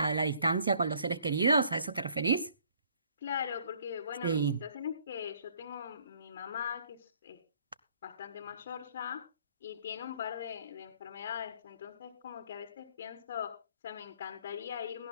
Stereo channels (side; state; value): both; inverted; correlation -0.60